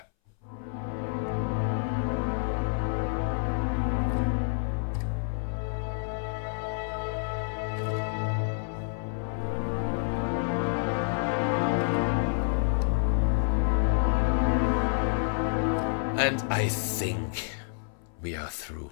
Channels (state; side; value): silent; right; 59 dB below the other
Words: And I think we are